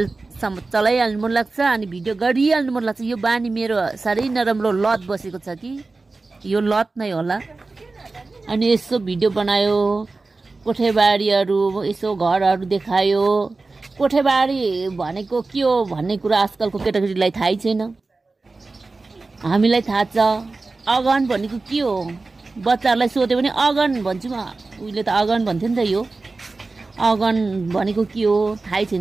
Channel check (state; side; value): quieter; left; 3.6 dB